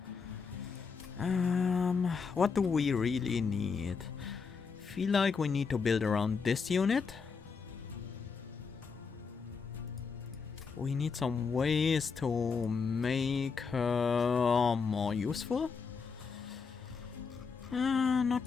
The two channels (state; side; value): quieter; right; 5.4 dB